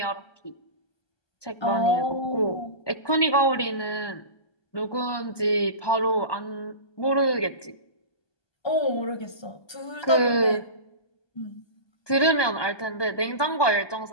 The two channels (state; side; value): late; right; 1.2 ms